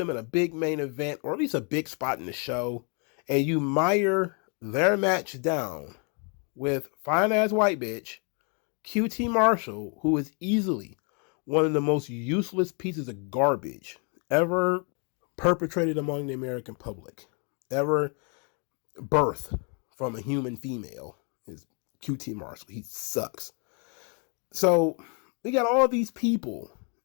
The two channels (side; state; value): right; quieter; 36.9 dB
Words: in a big main event, or at least a big spot in the show, and you mire their match down with fine-ass white bitch, QT Marshall, who is easily one of the most useless pieces of garbage ever perpetrated among the American public, ever birthed from a human female, is QT Marshall. He sucks. So we got all these people